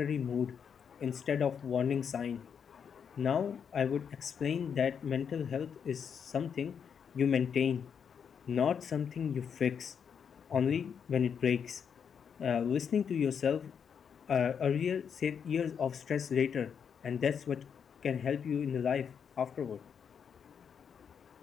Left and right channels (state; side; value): quieter; right; 7.2 dB